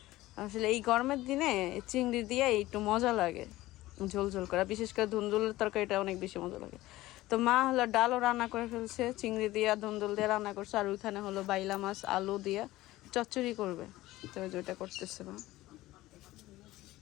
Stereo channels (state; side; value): quieter; right; 17.2 dB